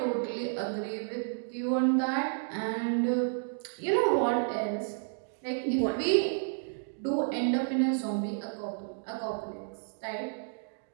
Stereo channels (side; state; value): left; silent; digital silence